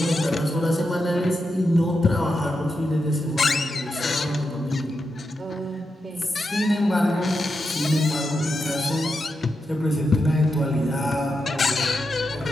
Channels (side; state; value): both; normal; correlation 0.87